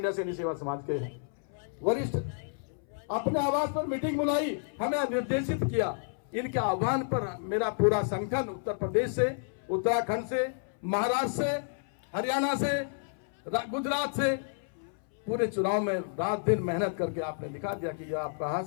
सैनिक सेवा समाज के हैं, वरिष्ठ, अपने आवास पर मीटिंग बुलाई, हमें निर्देशित किया। इनके आह्वान पर मेरा पूरा संगठन उत्तर प्रदेश से, उत्तराखंड से, महाराष्ट्र से, हरियाणा से, गुजरात से पूरे चुनाव में रात दिन मेहनत करके आपने दिखा दिया कि यह आप कहां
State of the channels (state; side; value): silent; right; 57 dB below the other